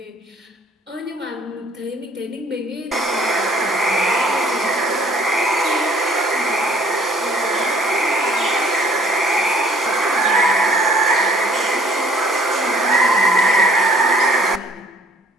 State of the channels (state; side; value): normal; both; correlation 0.57